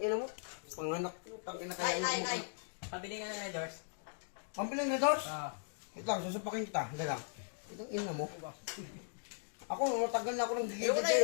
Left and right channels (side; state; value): right; silent; digital silence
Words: mo. Panganak mo. Tangina kaya. Nay. Pabili nga ng medors. Pambilin na doors? Oo. Wait lang, susupakin kita. Hindi lang. Itong ina mo. Ako, matagal na ako ng Ayoko na,